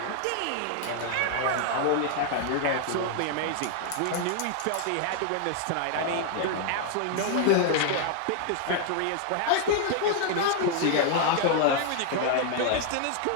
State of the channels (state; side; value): different; both; correlation 0.00